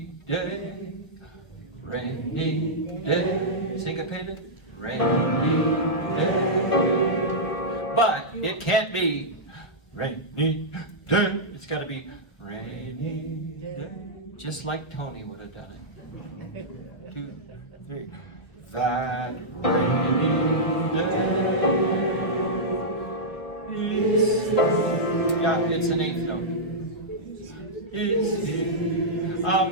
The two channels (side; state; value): right; late; 1.2 ms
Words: day, rainy day. Syncopated. Rainy day. But it can't be rainy day. It's got to be rainy day. Just like Tony would have done it. 2, 3. That rainy day is, yeah, it's an 8th note. Is here.